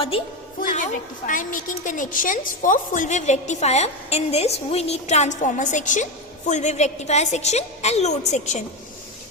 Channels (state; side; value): normal; both; correlation 0.13